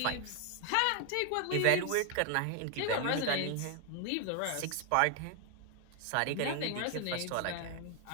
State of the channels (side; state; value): both; different; correlation 0.00